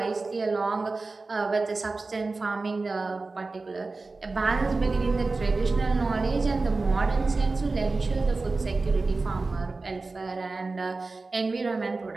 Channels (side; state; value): left; quieter; 3.6 dB